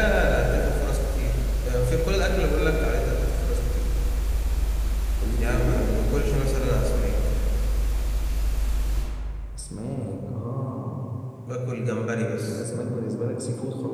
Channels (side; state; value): both; identical; correlation 1.00